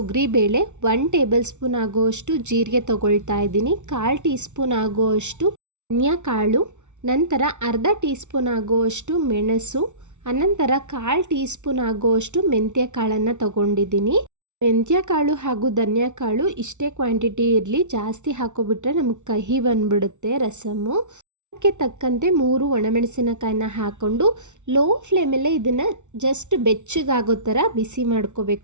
1 ಟೇಬಲ್ ಸ್ಪೂನ್ ಆಗುವಷ್ಟು ಜೀರಿಗೆ ತೊಗೊಳ್ತಾ ಇದ್ದೀನಿ, 1/4 ಟೀ ಸ್ಪೂನ್ ಆಗುವಷ್ಟು ಧನಿಯಾ ಕಾಳು, ನಂತರ ಅರ್ಧ ಟೀ ಸ್ಪೂನ್ ಆಗುವಷ್ಟು ಮೆಣಸು, ಅನಂತರ 1/4 ಟೀ ಸ್ಪೂನ್ ಆಗುವಷ್ಟು ಮೆಂತ್ಯ ಕಾಳನ್ನು ತೊಗೊಂಡಿದ್ದೀನಿ. ಮೆಂತ್ಯ ಕಾಳು ಹಾಗೂ ಧನಿಯಾ ಕಾಳು ಇಷ್ಟೇ ಕ್ವಾಂಟಿಟಿ ಇರಲಿ, ಜಾಸ್ತಿ ಹಾಕೋಬಿಟ್ರೆ ನಮಗೆ ಕಹಿ ಬಂದುಬಿಡುತ್ತೆ ರಸಮ್ಮು. ಅದಕ್ಕೆ ತಕ್ಕಂತೆ 3 ಒಣಮೆಣಸಿನಕಾಯಿನ ಹಾಕ್ಕೊಂಡು ಲೋ ಫ್ಲೇಮಲ್ಲೇ ಇದನ್ನು ಜಸ್ಟ್ ಬೆಚ್ಚಗಾಗೋ ಥರ ಬಿಸಿ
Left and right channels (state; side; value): late; left; 0.84 ms